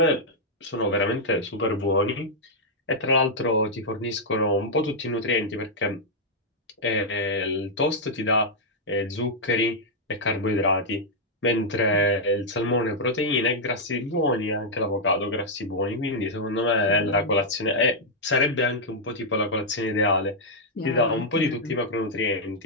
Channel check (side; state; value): both; normal; correlation -0.05